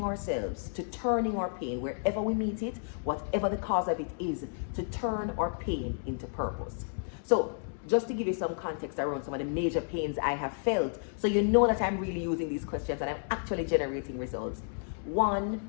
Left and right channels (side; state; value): right; silent; digital silence